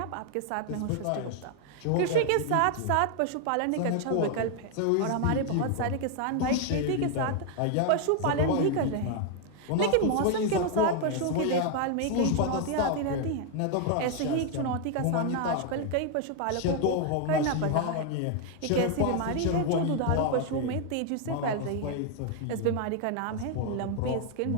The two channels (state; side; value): different; both; correlation 0.00